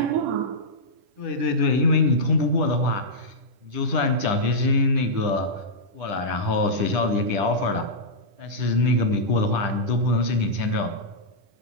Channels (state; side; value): late; left; 10 ms